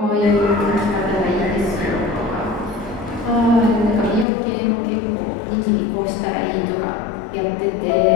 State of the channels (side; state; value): right; drops out; at 4.2 s